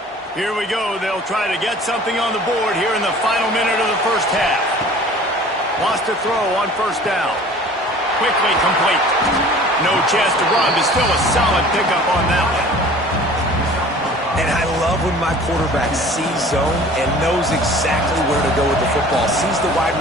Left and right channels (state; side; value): normal; both; correlation 0.46